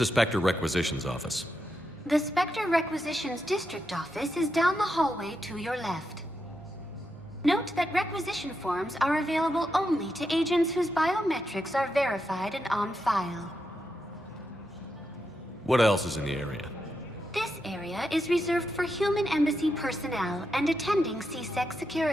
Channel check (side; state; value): both; normal; correlation 0.85